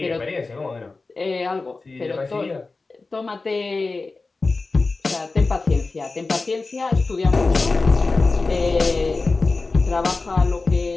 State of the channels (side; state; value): right; quieter; 3.7 dB